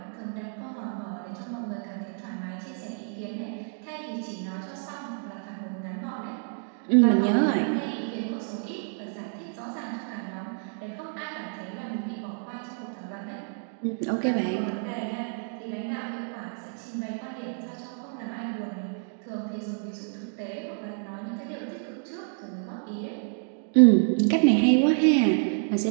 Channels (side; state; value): left; silent; 59 dB below the other